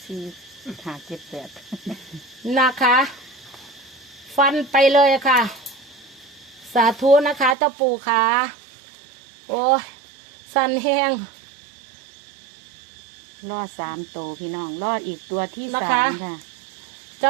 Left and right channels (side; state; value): left; drops out; at 7.6 s